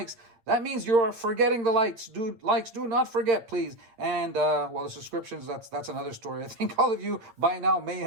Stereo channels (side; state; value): left; late; 9.0 ms